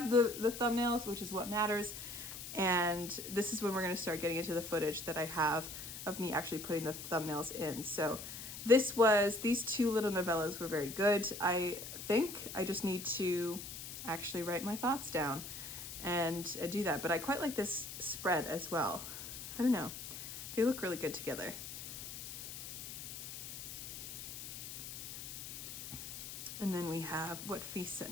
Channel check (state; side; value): noise; left; hiss, 9 dB below the sound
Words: the thumbnails, which is what matters. And this is when we're gonna start getting into the footage that I have of me actually putting the thumbnails in. So these two little novellas were very good. I think I just need to actually write my thoughts down and do that. But I quite like this spread as well. I don't know. They look really good together. And then we have What Feasts at